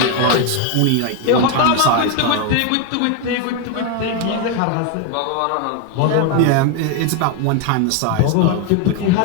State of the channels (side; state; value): both; different; correlation 0.01